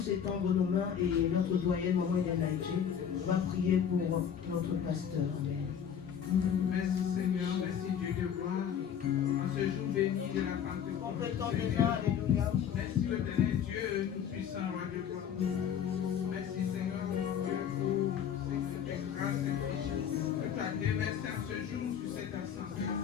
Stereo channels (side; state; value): right; quieter; 8.4 dB